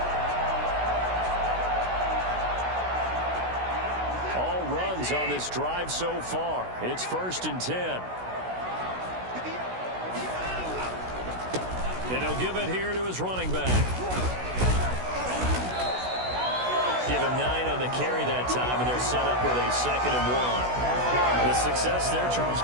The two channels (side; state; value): left; late; 16 ms